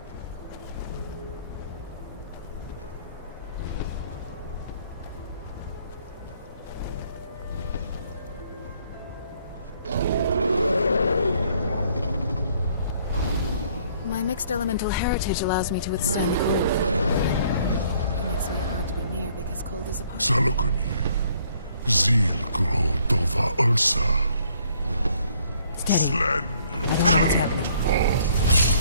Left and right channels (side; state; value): both; inverted; correlation -0.63